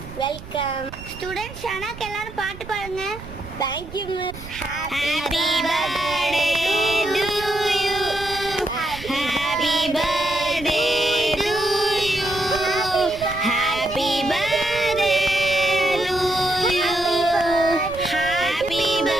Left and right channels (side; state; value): right; noise; rumble, 14 dB below the sound